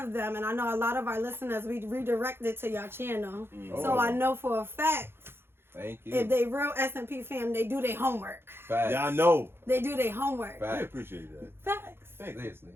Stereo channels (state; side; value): late; left; 0.11 ms